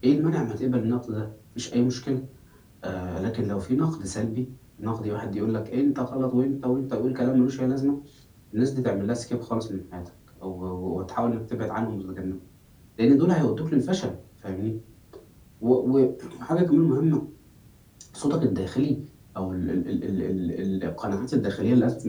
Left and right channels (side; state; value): both; identical; correlation 1.00